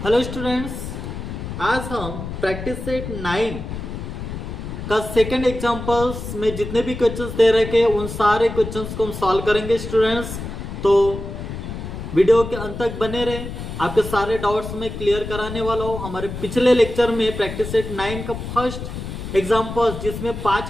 Hello students, आज हम practice set 9 का सेकंड एग्जांपल्स में जितने भी क्वेश्चंस दे रखे उन सारे क्वेश्चंस को हम सॉल्व करेंगे स्टूडेंट्स। तो वीडियो के अंत तक बने रहे, आपके सारे डाउट्स में क्लियर कराने वाला हूँ। हमारे पिछले लेक्चर में प्रैक्टिस सेट 9 का फर्स्ट एग्जाम्पल्स जिसमें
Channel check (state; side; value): noise; left; rumble, 8 dB below the sound